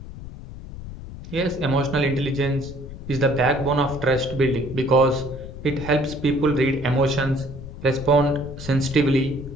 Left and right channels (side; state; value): left; noise; rumble, 12 dB below the sound